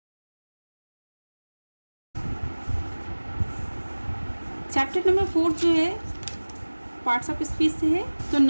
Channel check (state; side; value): inverted; both; correlation -1.00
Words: चैप्टर नंबर 4 जो है पार्ट्स ऑफ स्पीच से है। तो